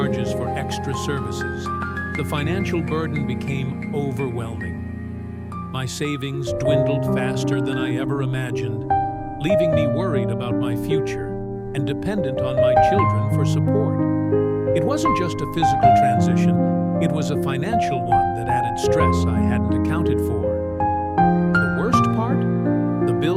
for extra services, the financial burden became overwhelming. My savings dwindled faster than I ever imagined, leaving me worried about my future and dependent on my children for support. It wasn't just a physical transition, it was a financial one that added stress I hadn't accounted for. The worst part? The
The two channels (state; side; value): identical; both; correlation 1.00